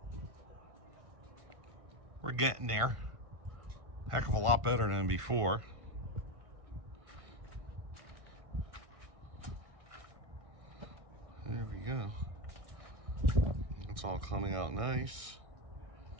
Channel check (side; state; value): left; late; 1.6 ms